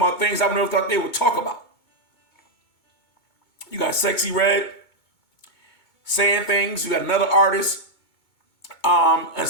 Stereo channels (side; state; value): right; late; 2.2 ms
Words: things I never thought they would talk about. You got Sexy Red saying things. You got another artist and